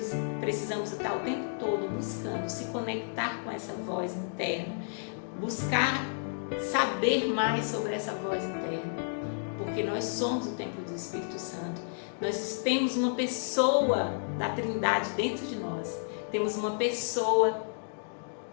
precisamos estar o tempo todo buscando se conectar com essa voz interna, buscar saber mais sobre essa voz interna, porque nós somos o templo do Espírito Santo. Nós temos uma pessoa da Trindade dentro de nós, temos uma pessoa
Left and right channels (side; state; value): right; silent; digital silence